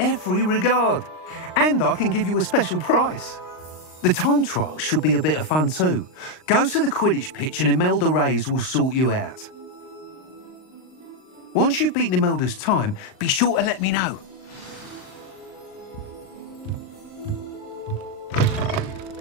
regard. And I can give you a special price. The time trial should be a bit of fun too. Go to the Quidditch pitch and Imelda Reyes will sort you out. Once you've beaten Imelda's time, be sure to let me know.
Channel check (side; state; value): right; late; 39 ms